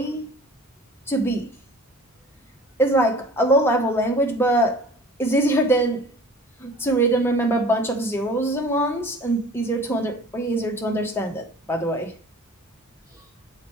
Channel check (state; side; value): normal; both; correlation 0.45